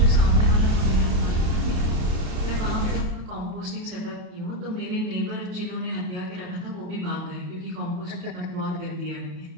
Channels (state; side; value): late; left; 28 ms